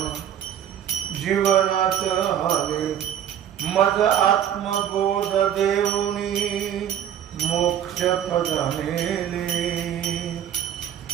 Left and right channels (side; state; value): left; quieter; 10.0 dB